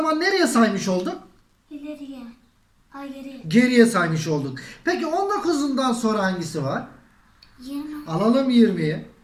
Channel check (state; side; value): identical; both; correlation 1.00